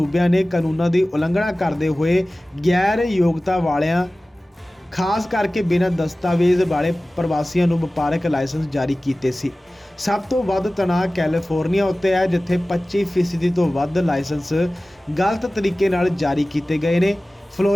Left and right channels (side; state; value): both; normal; correlation 0.97